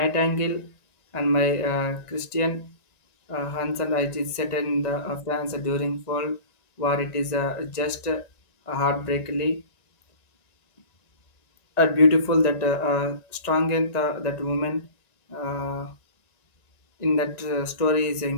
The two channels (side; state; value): right; late; 1.9 ms